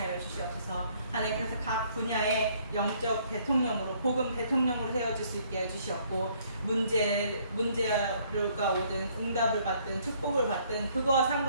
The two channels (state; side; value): inverted; both; correlation -0.64